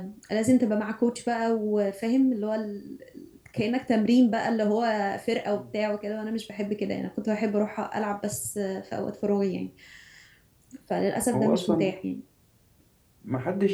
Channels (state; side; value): identical; both; correlation 1.00